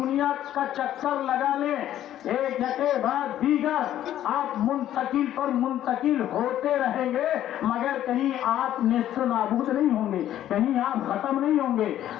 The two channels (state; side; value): quieter; right; 12.0 dB